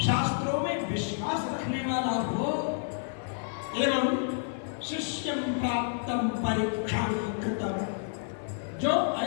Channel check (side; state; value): right; silent; digital silence